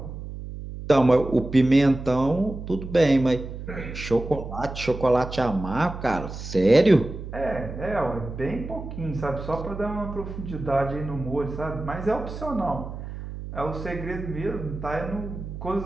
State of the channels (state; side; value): noise; right; hum, 9 dB below the sound